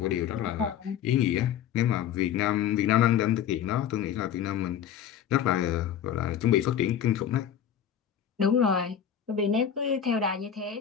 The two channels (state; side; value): quieter; right; 9.1 dB